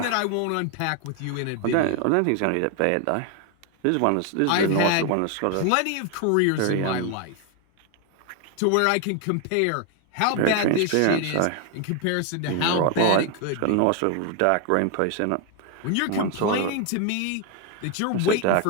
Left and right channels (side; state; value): both; different; correlation 0.01